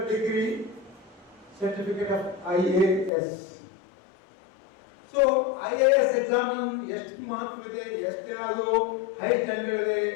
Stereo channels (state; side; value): drops out; right; at 3.1 s